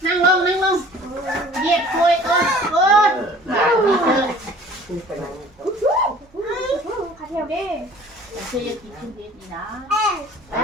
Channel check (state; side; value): normal; both; correlation 0.49